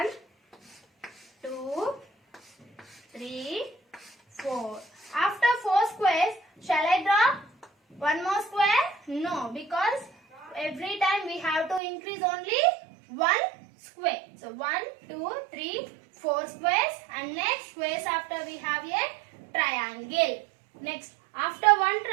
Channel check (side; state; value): left; drops out; at 11.8 s